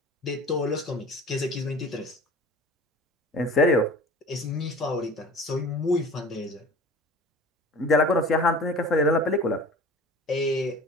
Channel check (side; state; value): both; normal; correlation 0.41